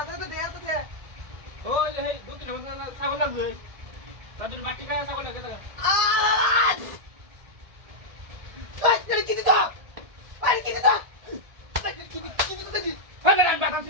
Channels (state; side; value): late; left; 1.7 ms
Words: তো দেয়া তো দে ওই যে এই দক্ষিণ আমাদের ছাগল লাগবে তার জন্য বাটি খায় ছাগল লাগে দেখা আই কি দিত আই কি দিত কি দিত দেখি হ্যাঁ না বাটা